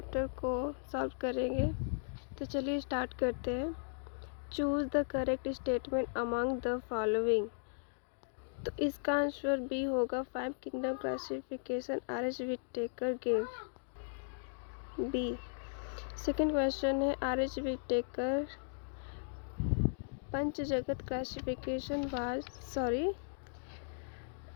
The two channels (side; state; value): right; silent; digital silence